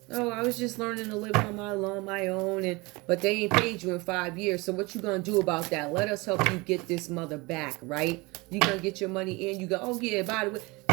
Oh, I was just learning to live on my own, but they ain't paid you in 5 years. So what you gonna do about that? Let us help you get this mother back, right? You gonna get your money in. You go, oh yeah, by the way,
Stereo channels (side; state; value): left; quieter; 24.7 dB